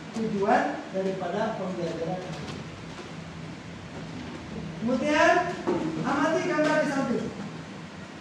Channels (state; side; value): identical; both; correlation 1.00